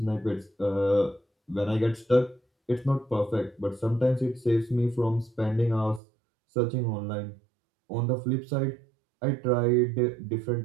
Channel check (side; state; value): left; drops out; at 6.0 s